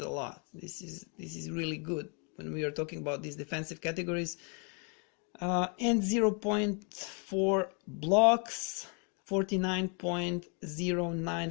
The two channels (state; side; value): quieter; right; 36.5 dB